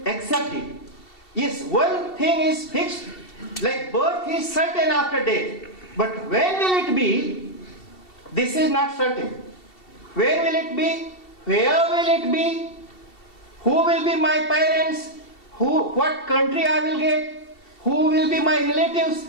accept it. Yes, one thing is fixed, like birth is certain after death. But when will it be? This is not certain. Where will it be? Where will it be? Who will be my parents? What country I will get? Who will be my relatives?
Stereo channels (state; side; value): late; right; 2.7 ms